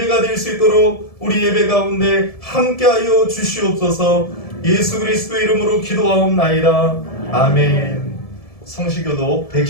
될 수 있도록 우리 예배 가운데 함께하여 주시옵소서. 예수 그리스도의 이름으로 기도하옵나이다. 아멘. 성시교독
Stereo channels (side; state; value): right; late; 1.7 ms